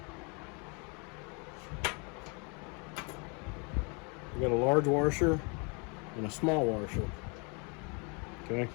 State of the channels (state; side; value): quieter; right; 33.1 dB